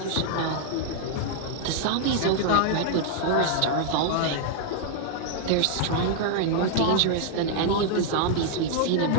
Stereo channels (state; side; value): different; both; correlation 0.00